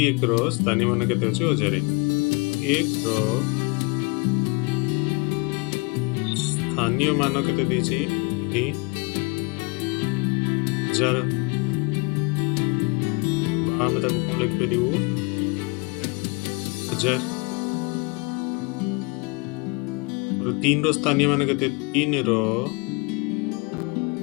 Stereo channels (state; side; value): quieter; right; 29.0 dB